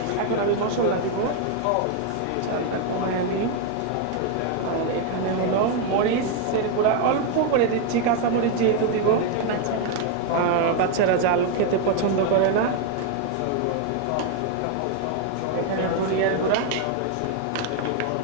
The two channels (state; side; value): different; both; correlation 0.01